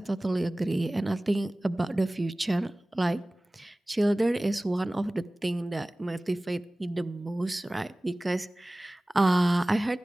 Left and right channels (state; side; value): normal; both; correlation 0.98